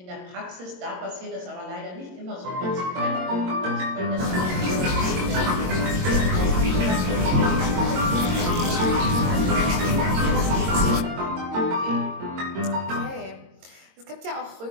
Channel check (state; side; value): late; left; 22 ms